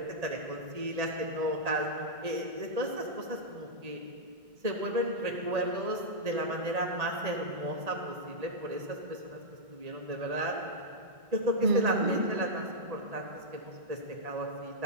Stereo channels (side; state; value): left; late; 1.8 ms